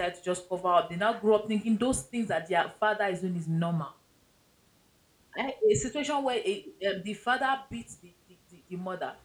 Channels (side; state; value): both; identical; correlation 1.00